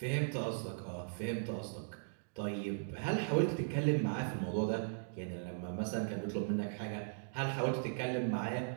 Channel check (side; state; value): left; silent; digital silence